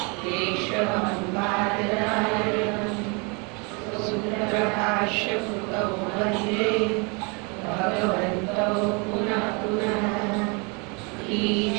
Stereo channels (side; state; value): left; quieter; 31.5 dB